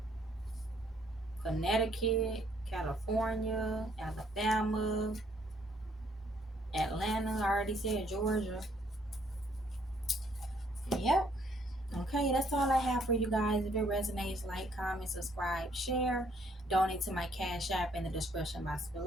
Connecticut, California, Alabama, Atlanta. I already said Georgia. Yep. Okay, that's all I have for you guys. If it resonates, like, comment, subscribe, share, donate to my Cash App in the description box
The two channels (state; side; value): normal; both; correlation 0.67